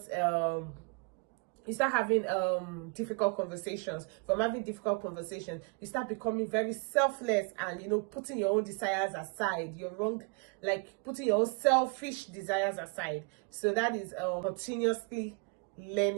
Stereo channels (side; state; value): left; quieter; 31.9 dB